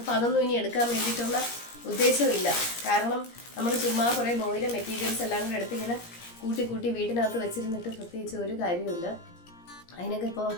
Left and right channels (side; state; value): right; late; 17 ms